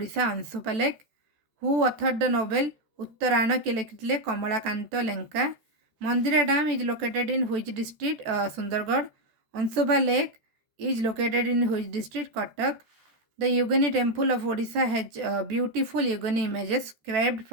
Ansupa Lake. Who authored the novel Uttarana Kilekile Kamalakanta Lenka? Mandira Dam is located in which district? Sundargarh. Ansupa Lake is located in which district? Cuttack. The Yogini temple of Odisha has beautiful Yogini images carved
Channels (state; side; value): late; left; 14 ms